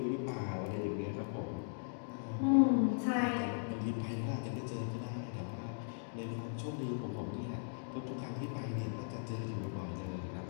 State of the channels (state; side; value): silent; right; digital silence